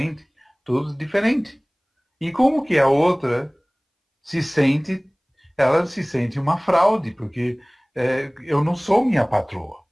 tudo diferente. E como que a outra se sente, ela se sente uma fraude, porque eu não sou minha patroa.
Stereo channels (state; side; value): identical; both; correlation 1.00